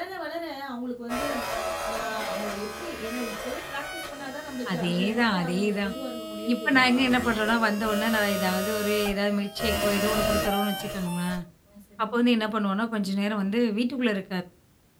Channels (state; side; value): identical; both; correlation 1.00